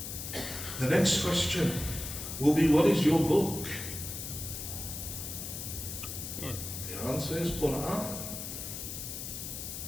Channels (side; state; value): left; noise; hiss, 7 dB below the sound